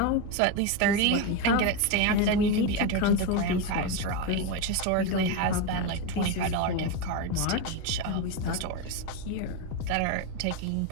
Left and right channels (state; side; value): different; both; correlation 0.04